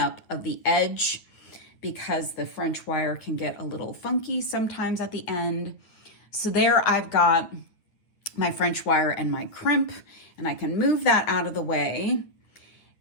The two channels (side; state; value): right; late; 9.4 ms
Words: of the edge because the French wire can get a little funky sometimes at the end. So there I've got my French wire and my crimp, and I can move that out of the way.